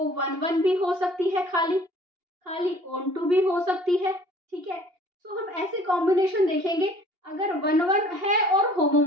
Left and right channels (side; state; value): left; late; 2.8 ms